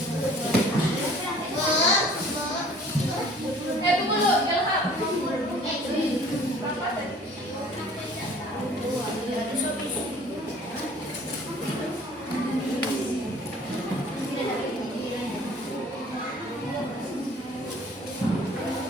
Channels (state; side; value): normal; both; correlation 0.51